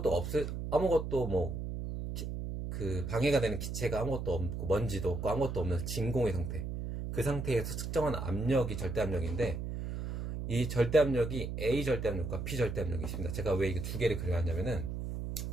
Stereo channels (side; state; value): right; noise; hum, 5 dB below the sound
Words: 그 방해가 되는 기체가 아무것도 없고 먼지도 없고 아무것도 없는 진공의 상태, 그 상태에서 측정한 압력이 절대압력인데, 이 절대압력이 A 절대압력과 B 절대압력이 있습니다. 제가 왜 이게 두 개를 그려놨냐면은,